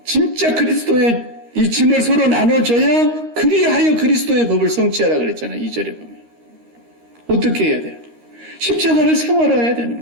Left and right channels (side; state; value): left; late; 13 ms